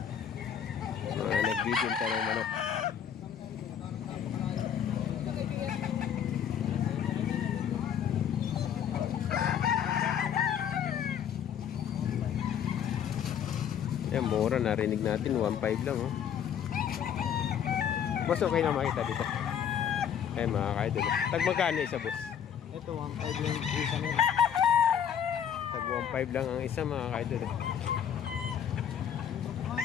Mga nagbibinta ng manok. Yan, mura, narinig natin 1.5 lang oh. Boss, okay na makita dito. Ay mga kaidol. Tag magkano isa, boss? Ito 1.5 lang isa nila. Tag 1.5 lang ang isa mga kaidol.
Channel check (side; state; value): right; quieter; 8.6 dB